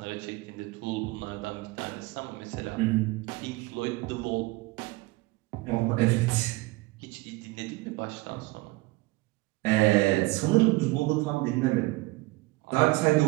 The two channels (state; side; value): quieter; left; 21.4 dB